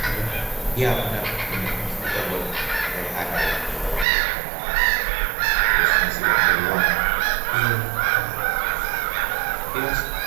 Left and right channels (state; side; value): drops out; left; at 4.0 s